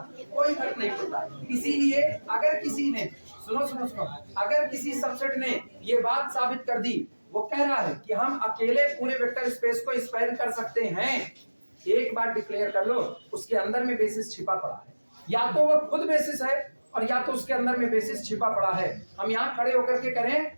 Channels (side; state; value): both; inverted; correlation -1.00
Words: कोई फर्क नहीं पड़ता। इसीलिए अगर किसी ने सुनो अगर किसी सबसेट ने ये बात साबित कर दी, वो कह रहा है कि हम अकेले पूरे वेक्टर स्पेस को स्पैन कर सकते हैं, एक बार डिक्लेयर कर लो उसके अंदर में बेसिस छिपा पड़ा है। या तो वो खुद बेसिस है और या तो उसके अंदर में बेसिस छिपा पड़ा है। हम यहाँ खड़े होकर के करें,